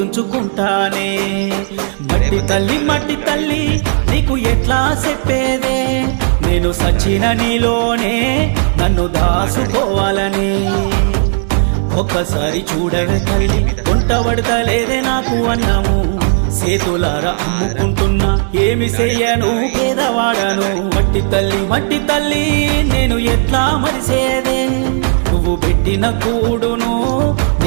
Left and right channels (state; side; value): silent; left; digital silence